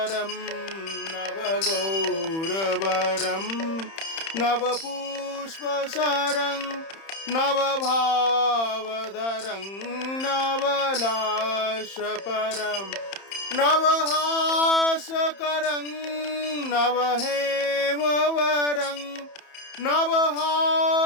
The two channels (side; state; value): right; late; 31 ms